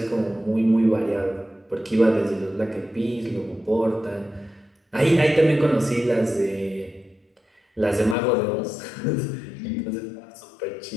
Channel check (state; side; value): drops out; right; at 8.2 s